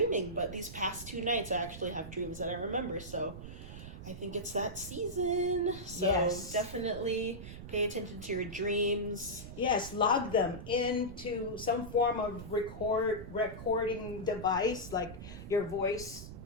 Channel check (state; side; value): noise; right; rumble, 11 dB below the sound